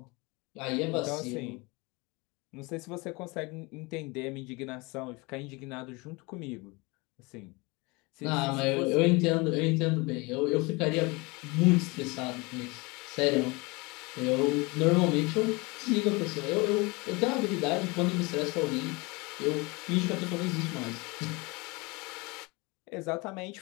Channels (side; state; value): right; quieter; 26.1 dB